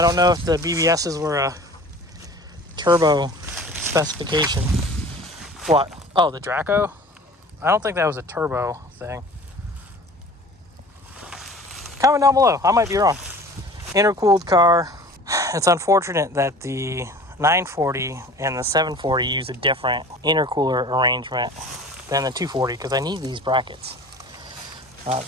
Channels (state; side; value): normal; both; correlation 0.43